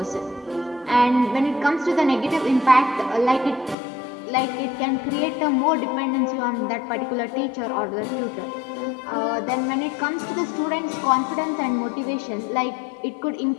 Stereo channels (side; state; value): right; drops out; at 3.8 s